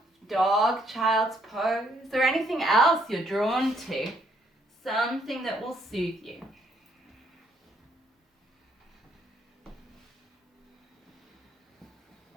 Dog, child's pose, or anything else you're drawn to. Something that will soothe you.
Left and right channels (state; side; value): normal; both; correlation 0.69